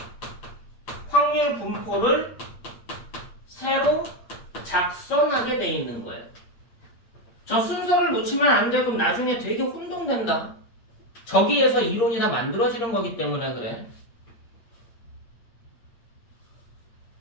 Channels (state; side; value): late; right; 8.6 ms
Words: 확률 분포를 새로 작성하게 돼 있는 거예요. 저 순서를 놓치면 안 돼. 그럼 나중에 되게 혼동된다. 저기에서 이론이 다 만들어지는 거기 때문에 그래.